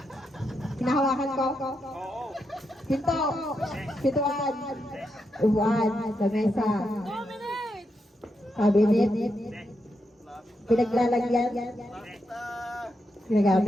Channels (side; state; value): both; normal; correlation 0.83